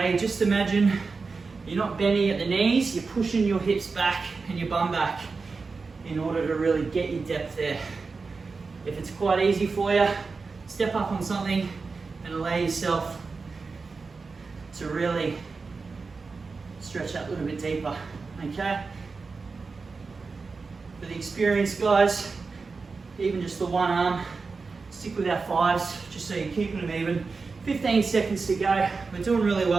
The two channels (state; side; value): quieter; left; 4.4 dB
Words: just imagine you're not bending at the knees, you're pushing your hips back and your bum back in order to really get your depth there. If it's quite easy for you, step up on something and allow yourself to really stretch out a little bit deeper, okay? For the experienced guys, even just the one arm, stick with our 5s, just so you're keeping them even. 15 seconds to go. We're doing really